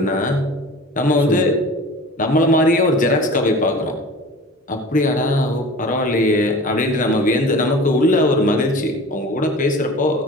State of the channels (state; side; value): normal; both; correlation 0.39